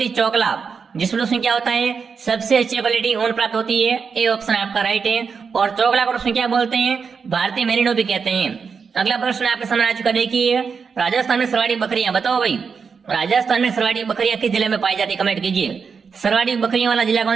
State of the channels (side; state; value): left; quieter; 5.7 dB